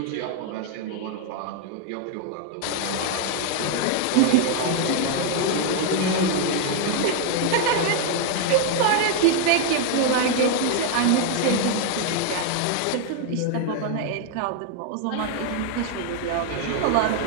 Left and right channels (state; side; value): different; both; correlation 0.00